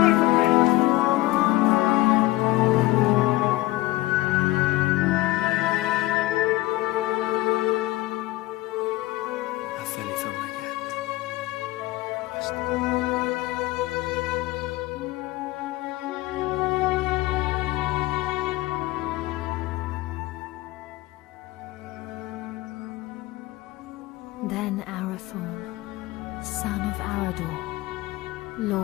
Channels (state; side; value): quieter; right; 18.8 dB